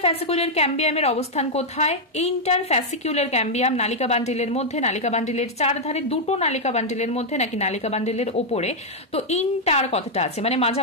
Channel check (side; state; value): both; normal; correlation -0.02